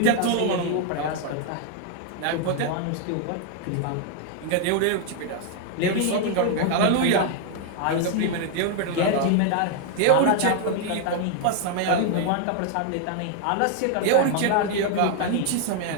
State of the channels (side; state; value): both; different; correlation 0.00